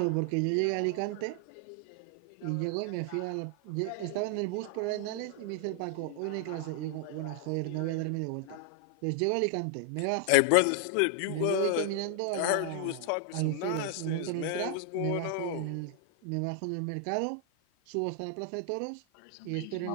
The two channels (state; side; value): different; both; correlation 0.00